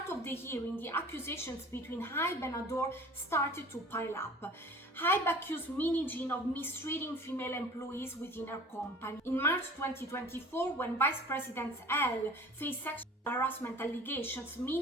of the hearing, the accusations between Hybe and Ador started to pile up. Hybe accused Min Hee Jin of mistreating female employees within her company. In March 2024, when Vice President L faced sexual harassment allegations,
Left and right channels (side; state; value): both; normal; correlation 0.45